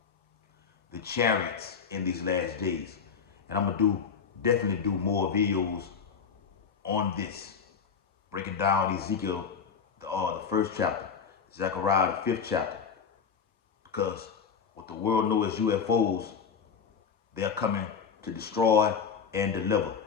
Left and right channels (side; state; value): right; quieter; 6.4 dB